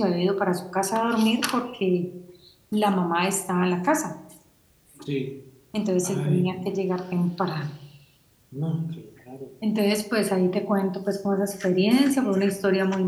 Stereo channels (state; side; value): identical; both; correlation 1.00